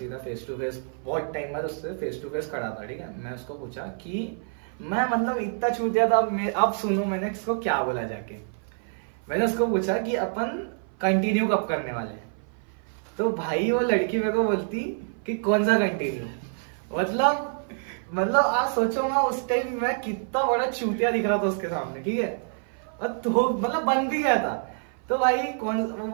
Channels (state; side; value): silent; left; 56 dB below the other